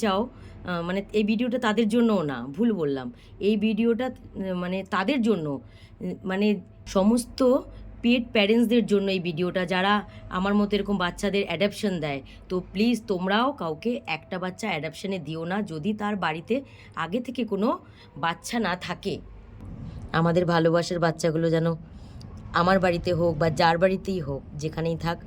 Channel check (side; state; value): both; identical; correlation 1.00